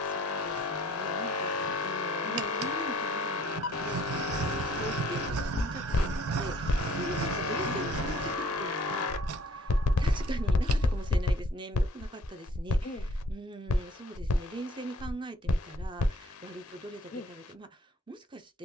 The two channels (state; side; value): normal; both; correlation 0.56